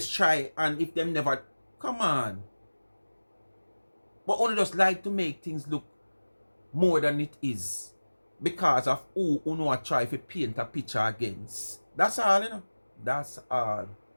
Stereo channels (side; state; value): both; inverted; correlation -1.00